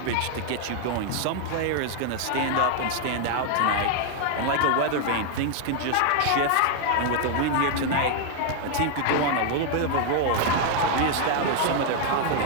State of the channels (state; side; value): different; both; correlation 0.00